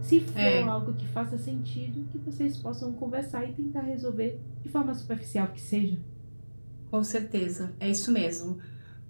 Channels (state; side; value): inverted; both; correlation -1.00